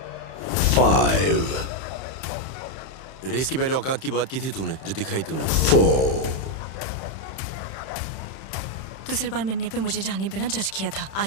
5, race की पहले औकात की बात की थी तूने, जो दिखाई तूने। 4, दूसरी बार मिलने पे मुझे जाने बिना जज किया था,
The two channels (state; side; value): late; right; 31 ms